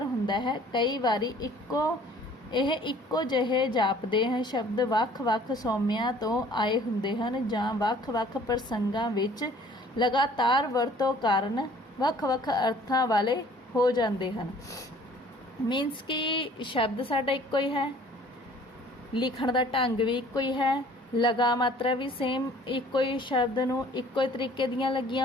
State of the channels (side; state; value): both; normal; correlation 0.53